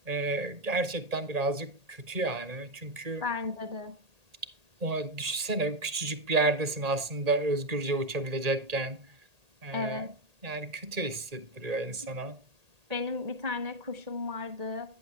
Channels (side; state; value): left; late; 1.8 ms